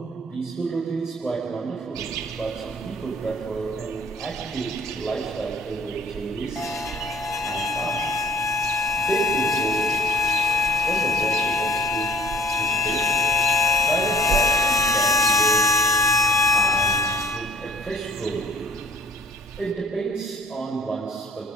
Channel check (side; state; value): both; normal; correlation 0.52